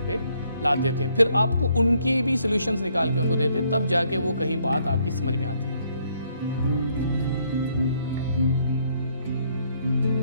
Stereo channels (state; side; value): inverted; both; correlation -0.69